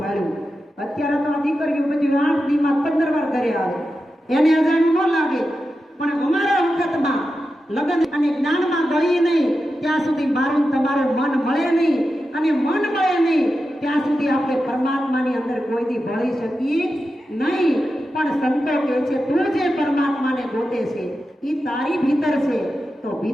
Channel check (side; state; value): both; normal; correlation 0.90